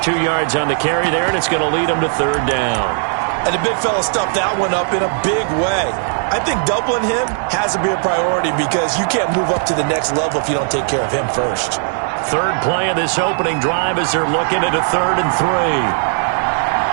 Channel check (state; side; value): silent; left; 68 dB below the other